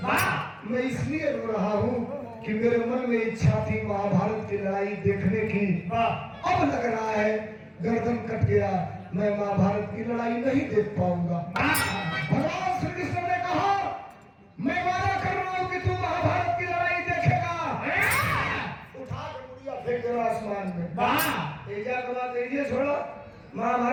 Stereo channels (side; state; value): both; identical; correlation 1.00